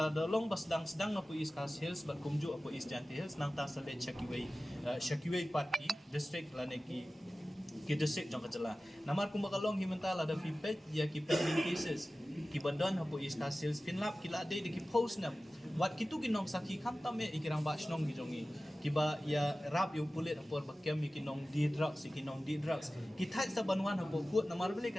dalong bas sedang apo East Coast Hills bat kumju apo East Giant Hills nang ta salet Shakiway party district la ni ki district jong kajala namar kum bakalong himenta la da fipet ya ki pending cases ki bandon hapo East Coast Hills finlap ki la de ki post na wat kitu kinong saki kam tame ikirang ba snong gi jongi kiba ya rap yu pulit apor bakem kinong di drugs ki thai sa banwan hapo court namar bele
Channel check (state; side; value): normal; both; correlation 0.96